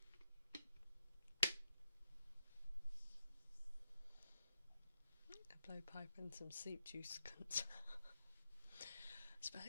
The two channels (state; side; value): inverted; both; correlation -0.81